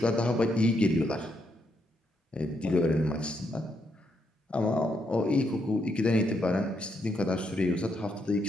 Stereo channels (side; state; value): both; normal; correlation 0.78